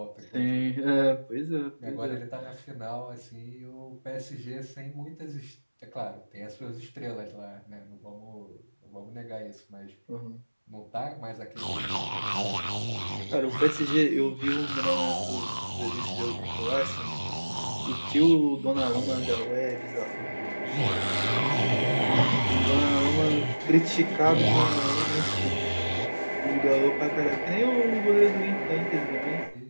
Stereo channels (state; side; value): inverted; both; correlation -1.00